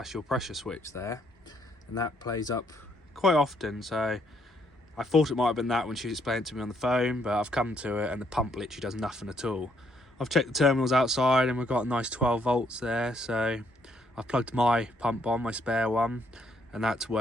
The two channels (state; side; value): normal; both; correlation 0.71